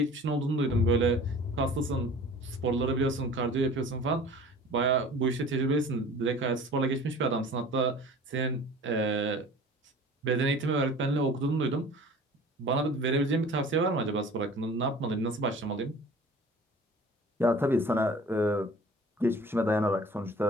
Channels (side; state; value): both; normal; correlation 0.44